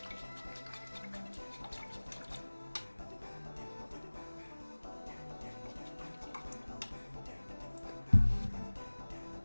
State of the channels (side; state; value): both; inverted; correlation -1.00